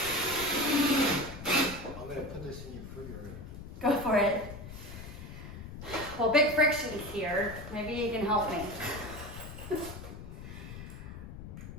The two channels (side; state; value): left; noise; rumble, 11 dB below the sound